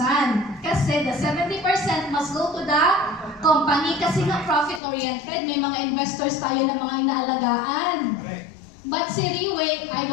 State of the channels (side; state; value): right; drops out; at 4.8 s